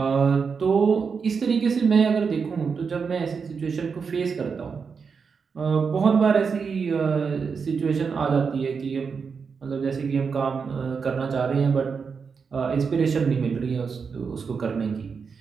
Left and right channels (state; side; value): quieter; left; 5.7 dB